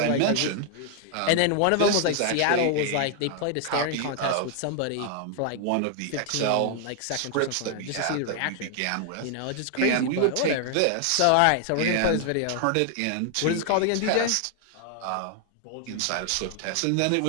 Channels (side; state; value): both; different; correlation 0.00